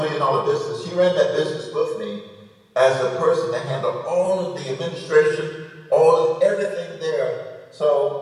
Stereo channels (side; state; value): both; identical; correlation 1.00